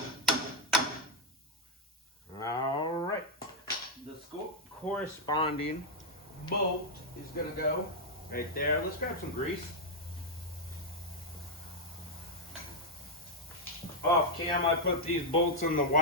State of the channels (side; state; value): both; normal; correlation -0.02